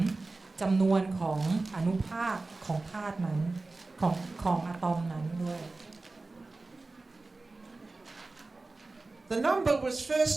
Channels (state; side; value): quieter; left; 3.4 dB